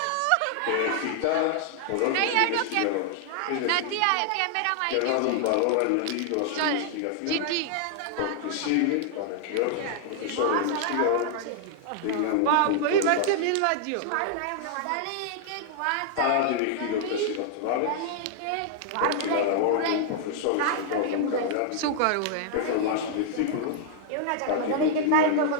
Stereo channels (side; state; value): both; different; correlation 0.00